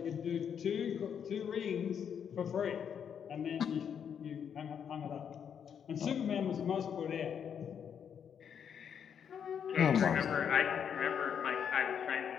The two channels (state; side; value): quieter; right; 7.9 dB